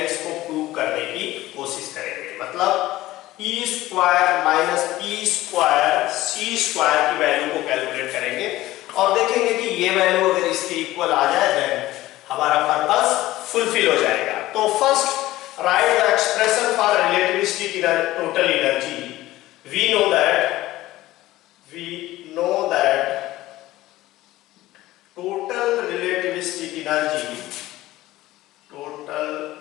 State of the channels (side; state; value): right; quieter; 16.6 dB